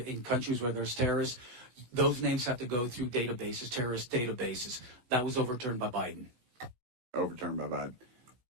countries where there's terrorists, those names have to go through databases, terrorist databases. That was overturned by Biden. Overturned by Biden.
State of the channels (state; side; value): late; left; 16 ms